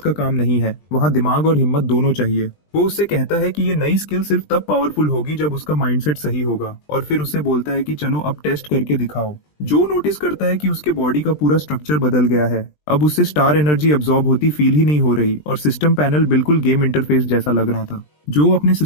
का काम नहीं है, वहाँ दिमाग और हिम्मत दोनों चाहिए। वो उससे कहता है कि ये नई स्किल सिर्फ तब पावरफुल होगी जब उसका माइंडसेट सही होगा, और फिर उससे बोलता है कि चलो अब टेस्ट करके दिखाओ। जो नोटिस करता है कि उसके बॉडी का पूरा स्ट्रक्चर बदल गया है। अब उससे स्टार एनर्जी अब्सॉर्ब होती फील ही नहीं हो रही और सिस्टम पैनल बिल्कुल गेम इंटरफेस जैसा लग रहा था। जो अपने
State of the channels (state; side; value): late; right; 20 ms